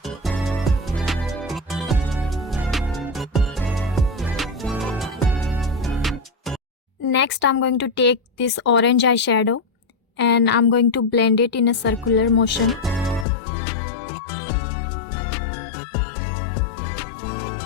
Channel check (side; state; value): right; drops out; at 13.2 s